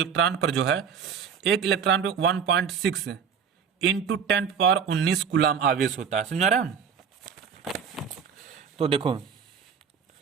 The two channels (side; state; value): left; quieter; 6.9 dB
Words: पर जो है, 1 इलेक्ट्रॉन पर 1.6 इंटू 10⁻19 कूलम आवेश होता है। समझा रहे हैं? तो देखो